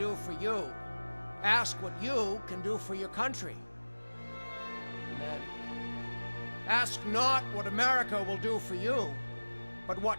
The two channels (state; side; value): inverted; both; correlation -1.00